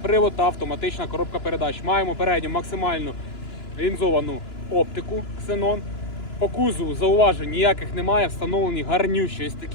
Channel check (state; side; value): late; right; 2.9 ms